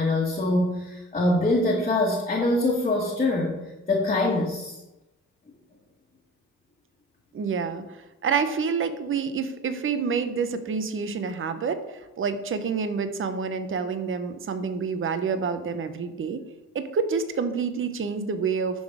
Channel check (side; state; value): both; normal; correlation 0.32